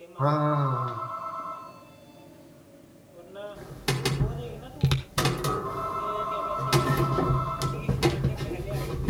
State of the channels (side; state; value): both; identical; correlation 1.00